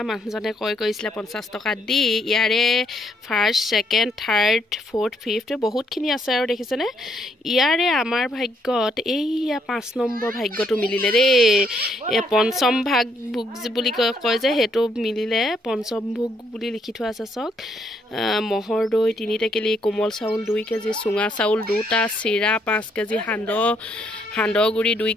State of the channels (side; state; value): both; normal; correlation 0.72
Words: মানুহজনে কৈছিলে 50 টকা দি ইয়াৰে first second third fourth fifth বহুতখিনি আছে আৰু দেখিছেনে ইয়াৰে আমাৰ ভাগ্যত এইয়া 5 নম্বৰ ভাগ্যটো মিলিলে দেই এই পঞ্চম ভাগ ভোগ বুলি কয় যে সেইটো মিলিলে পঞ্চম ভোগ বুলি লিখি থোৱা আছে চাওক মহৰ দৈ 3 টেকেলি কোমল চাউল 2 কেজি চুঙা চাউল 2টা চিৰা 5 কেজি সান্দহগুৰি 2